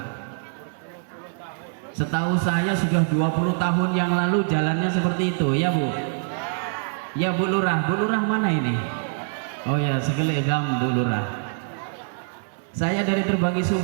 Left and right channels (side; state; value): left; silent; digital silence